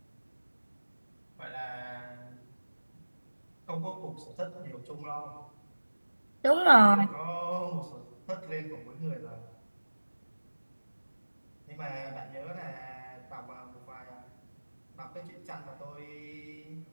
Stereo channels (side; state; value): both; inverted; correlation -1.00